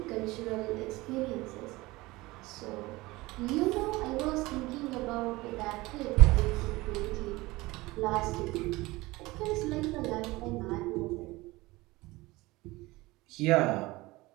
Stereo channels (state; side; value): quieter; left; 20.7 dB